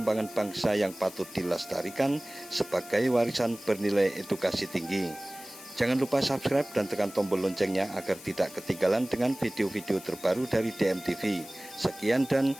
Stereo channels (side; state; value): left; noise; hiss, 17 dB below the sound